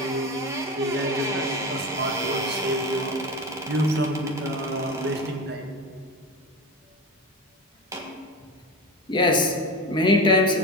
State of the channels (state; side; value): normal; both; correlation 0.25